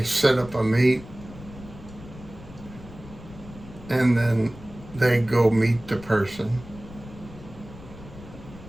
set up a meet, and then they go meet the person.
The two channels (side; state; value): left; noise; rumble, 17 dB below the sound